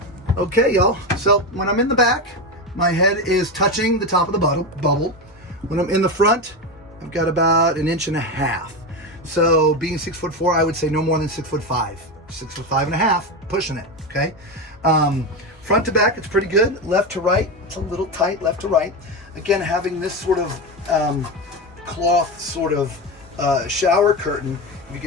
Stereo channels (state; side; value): normal; both; correlation 0.17